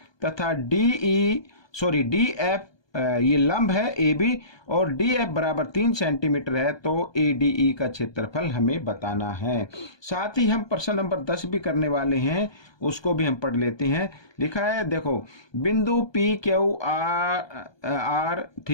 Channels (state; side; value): late; right; 1.2 ms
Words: तथा DF ये लंब है AB और DF बराबर 3 सेंटीमीटर है, तो ADE का क्षेत्रफल हमें बताना है। साथ ही हम प्रश्न नंबर 10 भी करने वाले हैं, उसको भी हम पढ़ लेते हैं। लिखा है देखो, बिंदु PQR,